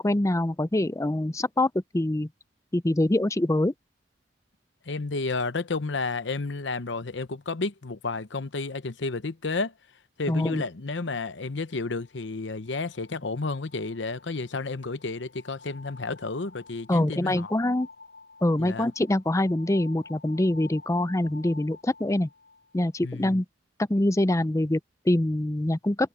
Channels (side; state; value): both; normal; correlation 0.73